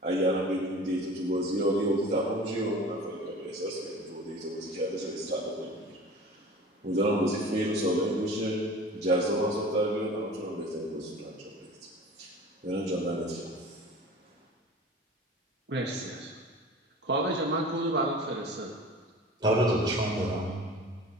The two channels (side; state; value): both; normal; correlation 0.40